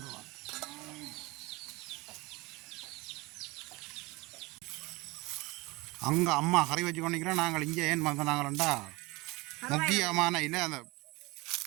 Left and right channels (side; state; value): left; quieter; 23.6 dB